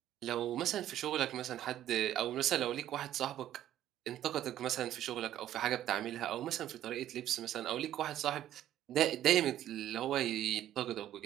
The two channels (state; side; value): quieter; left; 12.2 dB